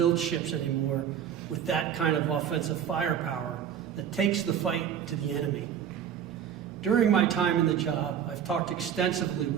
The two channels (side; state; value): left; quieter; 8.9 dB